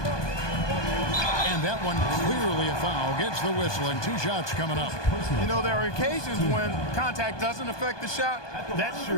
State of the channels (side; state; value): right; late; 1.2 ms